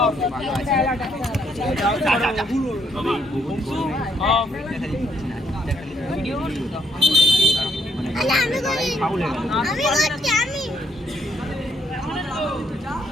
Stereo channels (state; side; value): normal; both; correlation 0.72